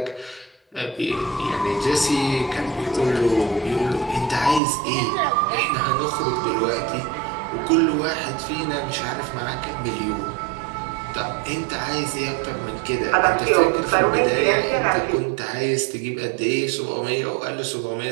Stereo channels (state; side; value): drops out; left; at 4.6 s